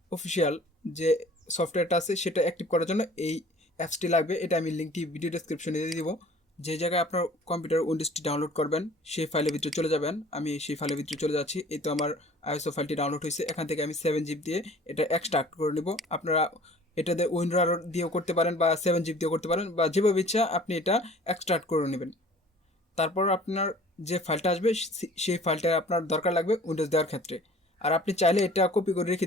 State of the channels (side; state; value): both; normal; correlation 0.50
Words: অফিসিয়াল যে সফটওয়্যারটা আছে সেটা অ্যাক্টিভ করার জন্য এই অ্যাপসটি লাগবে। এটা আমি লিঙ্কটি ভিডিও ডেসক্রিপশনে দিয়ে দিব। যে জায়গায় আপনার কম্পিউটার উইন্ডোজটি ডাউনলোড করবেন সেই ফাইলের ভিতরে চলে যাবেন। আমি সেই ফাইলের ভিতরে চলে যাচ্ছি। এই তো আমার আইএসও ফাইলটি ডাউনলোড হয়েছে। এখান থেকে আমি 7 জিবি দিয়ে এটা এক্সট্রাক্ট করে নেব। আপনারা এটাতে উইন্ডোর দিয়েও করতে পারেন বা 7 জিবি দিয়েও করতে পারেন, বা যেভাবে ইচ্ছা আপনি এটা এক্সট্রাক্ট করে নেবেন। তারপর আপনার যে ফাইলটা আসবে সেই ফাইলটা আপনার দরকার লাগবে উইন্ডোজ দেওয়ার ক্ষেত্রে। আর আপনি চাইলে এটা কপি করে রেখে